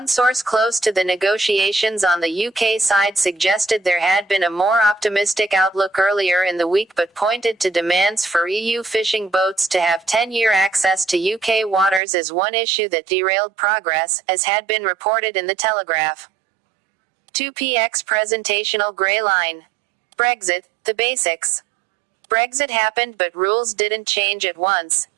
source close to the negotiations on the UK side suggested there had been a more optimistic outlook earlier in the week, but pointed to demands for EU fishing boats to have 10-year access to UK waters as one issue that derailed progress, as had been reported in the Telegraph. 2px presentational grey line. Brexit, the basics. Brexit happened, but rules didn't change at once.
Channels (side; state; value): left; drops out; at 12.0 s